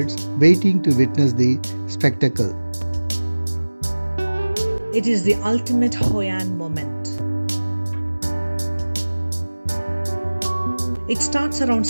waiting to witness the spectacle. It is the ultimate Hoi An moment. It starts around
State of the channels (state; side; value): inverted; both; correlation -1.00